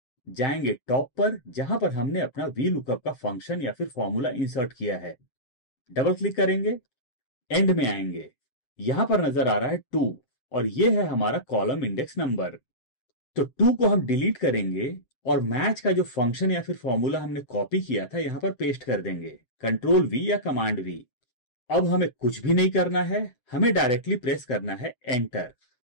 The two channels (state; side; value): late; right; 7.9 ms